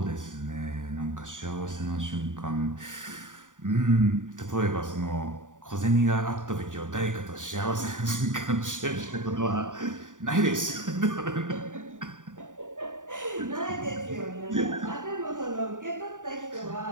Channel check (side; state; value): left; late; 0.87 ms